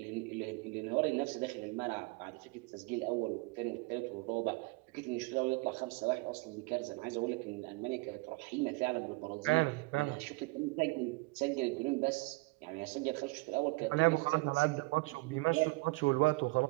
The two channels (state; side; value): quieter; left; 24.6 dB